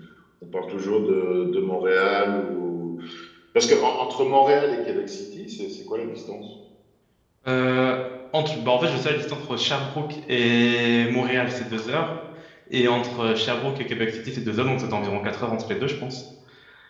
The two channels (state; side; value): identical; both; correlation 1.00